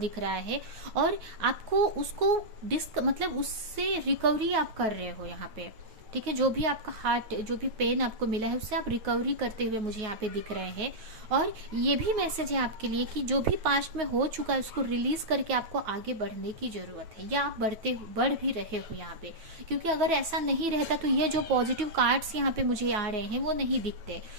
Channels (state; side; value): late; left; 9.1 ms